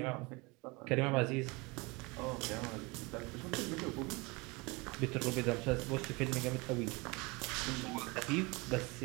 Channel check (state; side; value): quieter; left; 26.1 dB